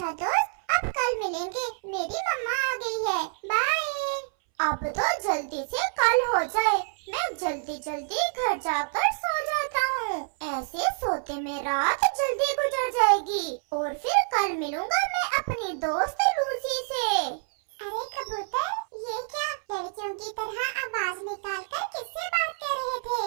दोस्त, अब कल मिलेंगे, मेरी मम्मा आ गई है, बाय। अब तो जल्दी से कल हो जाए, मैं जल्दी जल्दी घर जाकर सो जाता हूँ। ऐसे सोते में रात जल्दी गुजर जाएगी और फिर कल मिलूंगा मैं अपनी दोस्त लूसी से। अरे कबूतर, ये क्या लड़कियों की तरह आवाज निकालकर किससे बात कर रहे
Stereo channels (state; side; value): silent; left; 60 dB below the other